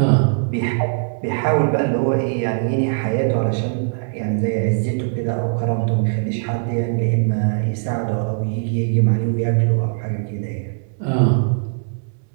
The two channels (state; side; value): silent; left; 65 dB below the other